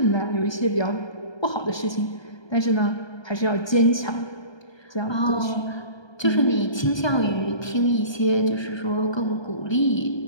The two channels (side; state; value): right; late; 1.2 ms